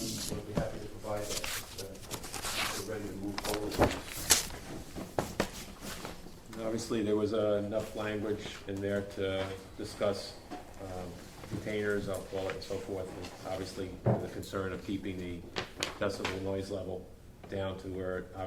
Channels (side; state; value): both; identical; correlation 1.00